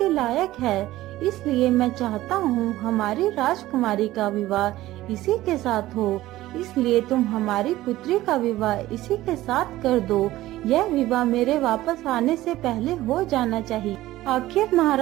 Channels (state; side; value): quieter; left; 16.0 dB